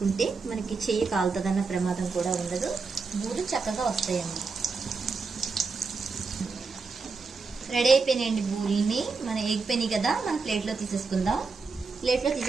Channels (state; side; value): quieter; left; 4.5 dB